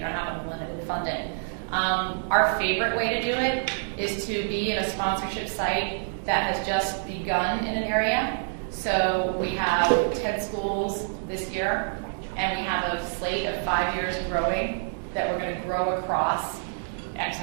don't have unlimited funding. Our favorite way to do it is to be in a sponsorship site that has just begun in an area. So we have 10 schools this year, and we have a slate of 5 years growing that we're going to grow across X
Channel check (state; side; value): silent; left; digital silence